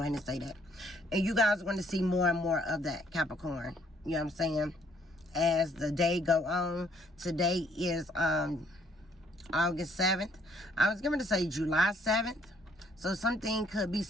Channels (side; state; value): both; normal; correlation 0.65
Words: ahead and say that. And you guys are going to see more and more of that, Capricorn. You know what I'm saying? As the day go on. Today is August 7th. I was going to say July 7th. So something could be